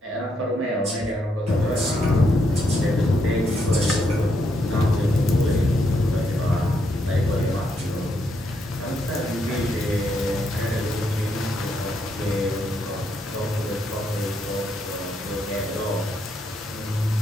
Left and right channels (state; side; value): normal; both; correlation 0.77